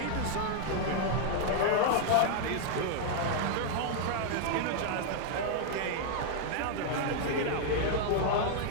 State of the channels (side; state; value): both; different; correlation 0.00